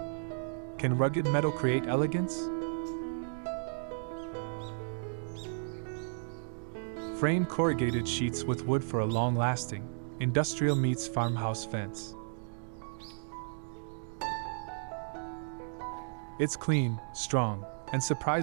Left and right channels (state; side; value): silent; left; digital silence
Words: Can rugged metal create elegance? Frame corrugated sheets with wood for a long-lasting, industrial meets farmhouse fence. It's clean, strong, and